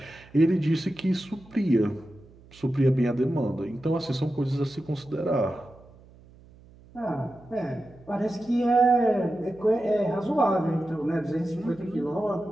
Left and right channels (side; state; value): right; noise; hum, 24 dB below the sound